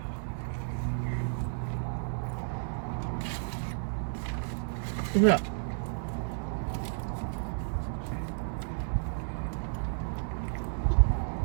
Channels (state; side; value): silent; left; digital silence